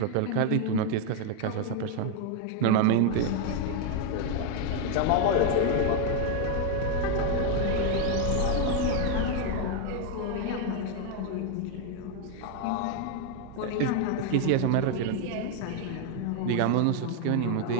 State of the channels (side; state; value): both; different; correlation 0.01